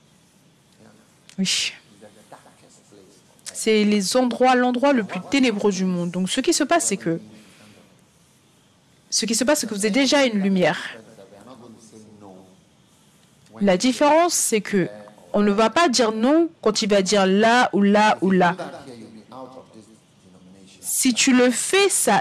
Oui. C'est l'endroit le plus ténébreux du monde. Donc, ce qui se passe, c'est que Ce qui se passe, c'est que vous êtes déjà une lumière. La différence, c'est que on ne va pas dire non quand il va dire là ou là ou là. Si tu le fais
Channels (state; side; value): identical; both; correlation 1.00